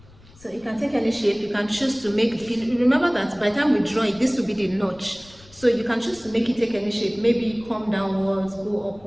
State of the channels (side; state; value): left; noise; rumble, 25 dB below the sound